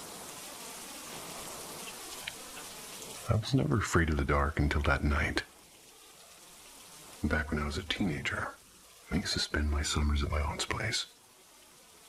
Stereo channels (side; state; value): both; identical; correlation 1.00